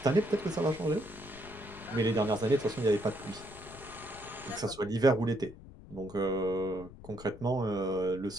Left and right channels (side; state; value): left; noise; rumble, 17 dB below the sound